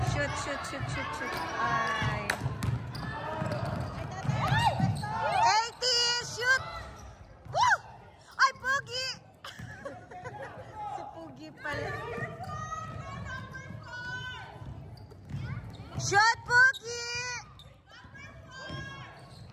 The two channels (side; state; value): both; identical; correlation 1.00